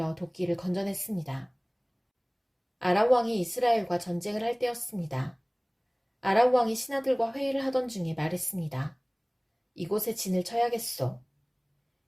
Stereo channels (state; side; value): identical; both; correlation 1.00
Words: 도끼를 건져냈습니다. 아람 왕이 이스라엘과 전쟁을 할 때였습니다. 아람 왕이 신하들과 회의를 하던 중에 말했습니다. 이곳에 진을 쳐야겠소.